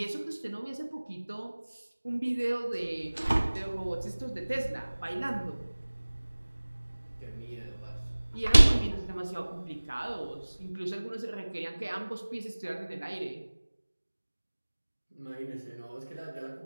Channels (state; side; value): inverted; both; correlation -1.00